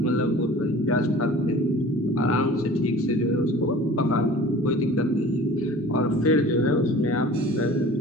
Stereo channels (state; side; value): normal; both; correlation 0.43